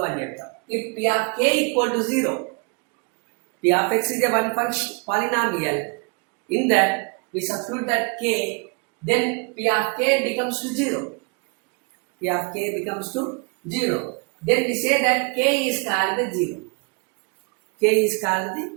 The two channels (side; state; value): left; quieter; 32.9 dB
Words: అని చెప్తాం. If p of k equal to 0, p of x is a one function polynomial, in that we substitute that k, then p of k becomes to 0. P of k becomes to 0. Then we say that k is called the 0. K is called the